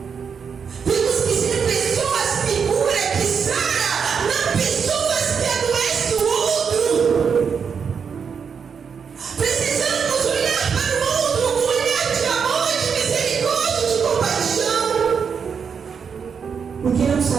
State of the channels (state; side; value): quieter; left; 6.5 dB